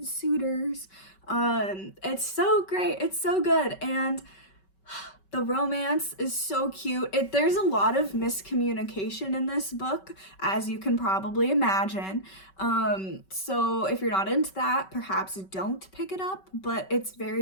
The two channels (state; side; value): late; right; 5.3 ms